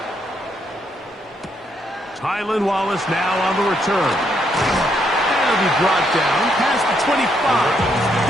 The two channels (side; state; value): both; normal; correlation 0.75